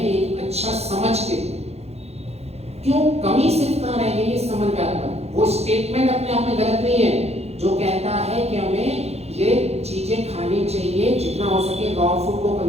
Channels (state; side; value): late; left; 0.31 ms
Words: एक अच्छा समझ के। क्यों कमी सिर्फ कहाँ रह गई है समन्वय। वो स्टेटमेंट अपने आप में गलत नहीं है जो कहता है कि हमें ये चीजें खानी चाहिए, जितना हो सके रॉ फूड को